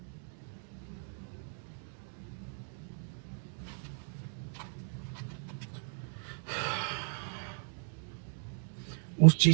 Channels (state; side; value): silent; left; 54 dB below the other